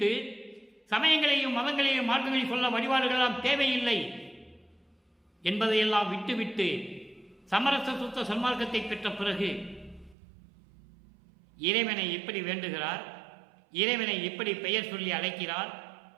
சமயங்களையும் மதங்களையும் மார்க்கங்களையும் சொல்ல வழிபாடுகளெல்லாம் தேவையில்லை என்பதையெல்லாம் விட்டுவிட்டு சமரச சுத்த சன்மார்க்கத்தை பெற்ற பிறகு இறைவனை எப்படி வேண்டுகிறார், இறைவனை எப்படி பெயர் சொல்லி அழைக்கிறார்,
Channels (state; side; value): drops out; left; at 10.2 s